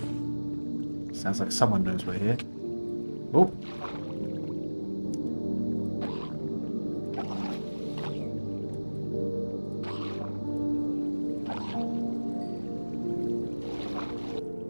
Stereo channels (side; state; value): both; inverted; correlation -1.00